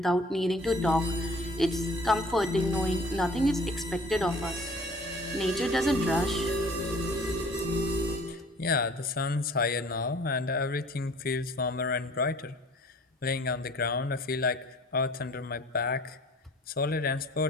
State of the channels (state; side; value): normal; both; correlation 0.51